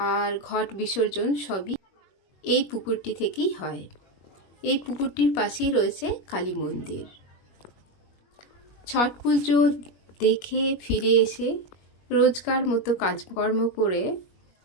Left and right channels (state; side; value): late; right; 21 ms